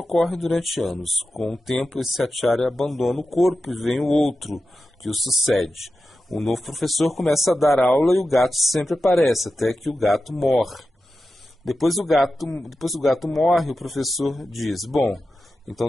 durante anos. Com o tempo esse acharya abandona o corpo e vem o outro que o sucede. O novo professor começa a dar aula e o gato sempre aparece, até que o gato morre. Depois o gato morre, o professor diz, bom, então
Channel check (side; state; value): both; normal; correlation 0.92